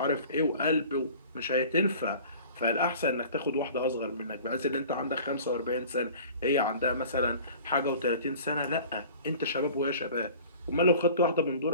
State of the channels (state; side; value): inverted; both; correlation -0.44